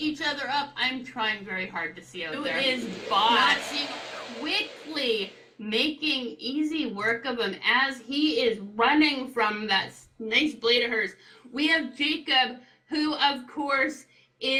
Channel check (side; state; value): both; identical; correlation 1.00